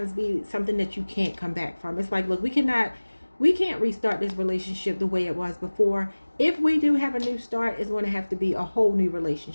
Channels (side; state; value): both; inverted; correlation -1.00